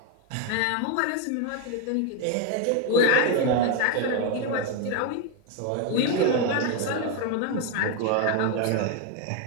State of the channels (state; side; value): different; both; correlation 0.01